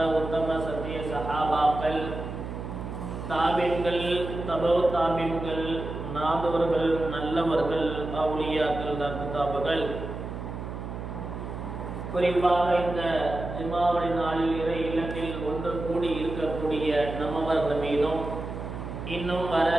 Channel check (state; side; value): noise; right; hum, 7 dB below the sound